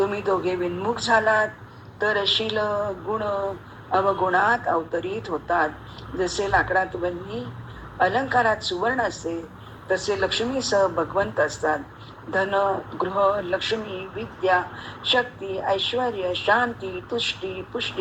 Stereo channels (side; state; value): both; identical; correlation 1.00